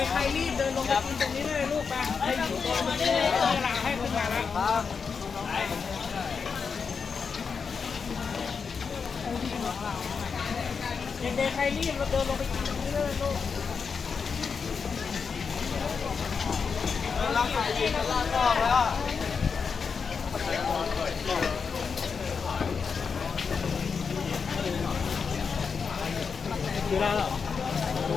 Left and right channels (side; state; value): right; quieter; 5.7 dB